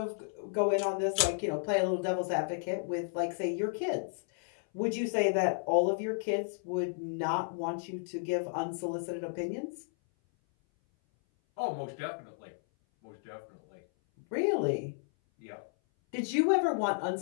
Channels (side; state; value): right; silent; 56 dB below the other